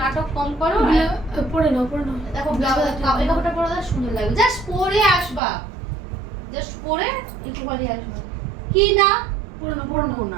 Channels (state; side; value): drops out; left; at 5.4 s